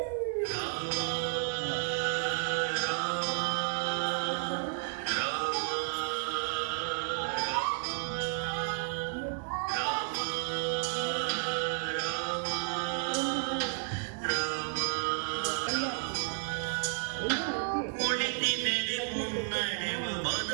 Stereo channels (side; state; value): left; silent; 56 dB below the other